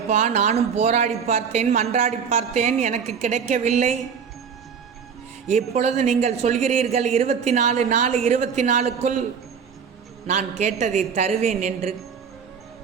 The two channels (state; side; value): quieter; left; 6.7 dB